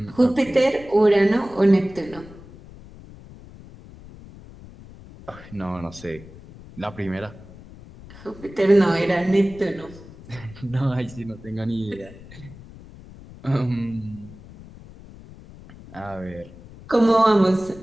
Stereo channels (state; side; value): noise; left; rumble, 19 dB below the sound